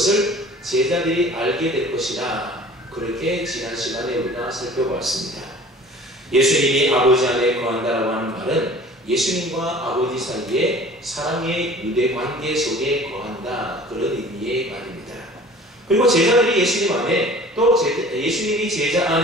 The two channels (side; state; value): both; normal; correlation 0.45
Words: 제자들이 알게 될 것이다, 그렇게 지난 시간에 우리가 살펴보았습니다. 예수님이 아버지 안에 거한다라고 하는 말은 예수님과 아버지 사이에 사랑의 유대 관계 속에 거한다, 그런 의미의 말입니다. 그리고 제자들이 예수님 안에, 또 예수님이 제자